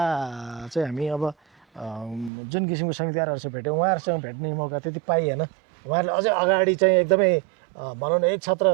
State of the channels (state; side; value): drops out; left; at 2.3 s